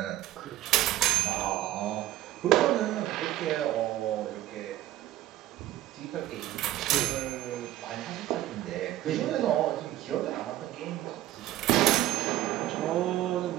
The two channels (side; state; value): left; quieter; 14.3 dB